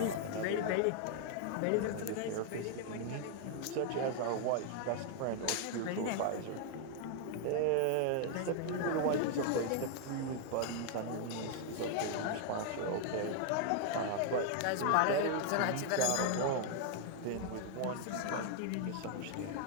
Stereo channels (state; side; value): different; both; correlation 0.00